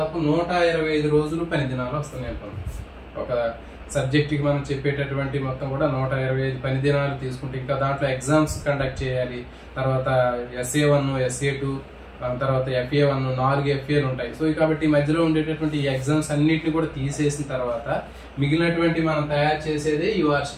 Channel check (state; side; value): identical; both; correlation 1.00